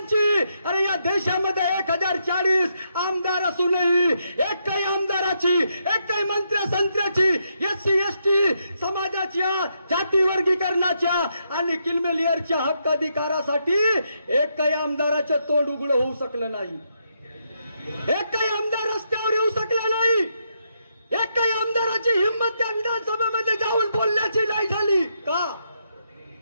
अरे या देशामध्ये 1040 आमदार असूनही एकही आमदाराची, एकही मंत्र्याची SC ST समाजाच्या जाती वर्गीकरणाच्या आणि किलमेलियरच्या हक्क अधिकारासाठी एकही आमदाराचे तोंड उघड होऊ शकलं नाही. एकही आमदार रस्त्यावर येऊ शकला नाही. एकही आमदाराची हिंमत त्या विधानसभेमध्ये जाऊन बोलण्याची नाही झाली.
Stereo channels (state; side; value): inverted; both; correlation -0.79